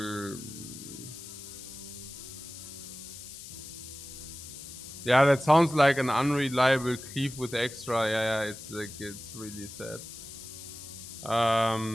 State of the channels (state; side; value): noise; left; hiss, 13 dB below the sound